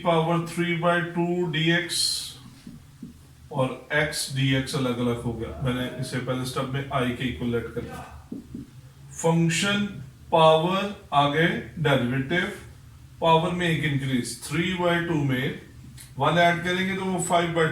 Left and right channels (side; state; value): both; identical; correlation 1.00